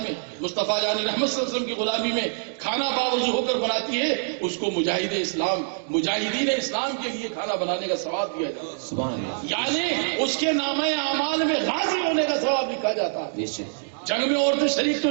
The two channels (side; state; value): left; silent; digital silence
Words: مصطفیٰ جان رحمت صلی اللہ علیہ وسلم کی غلامی میں کھانا باوضو ہو کر بناتی ہے، اس کو مجاہد اسلام، مجاہدین اسلام کے لیے کھانا بنانے کا ثواب دیا جاتا ہے۔ سبحان اللہ۔ یعنی اس کے نامہ اعمال میں غازی ہونے کا ثواب لکھا جاتا ہے۔ بے شک۔ جنگ میں عورتیں شریک تو